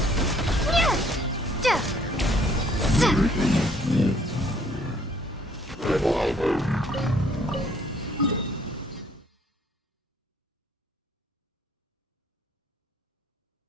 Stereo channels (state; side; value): normal; both; correlation 0.63